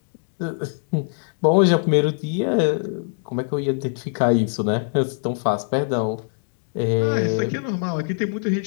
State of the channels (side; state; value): right; silent; digital silence